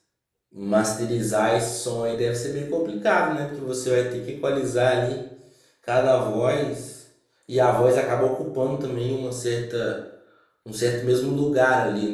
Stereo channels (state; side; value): identical; both; correlation 1.00